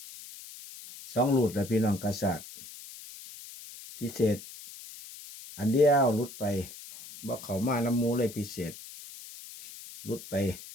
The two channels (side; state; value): left; noise; hiss, 15 dB below the sound